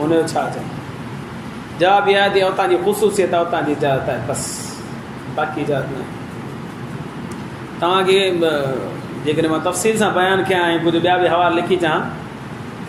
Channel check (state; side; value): identical; both; correlation 1.00